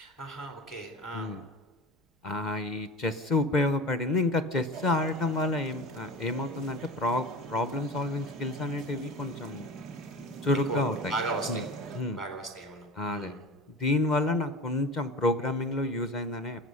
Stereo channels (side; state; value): both; normal; correlation 0.33